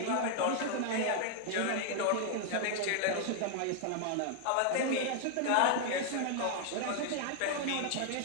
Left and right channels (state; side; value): different; both; correlation 0.00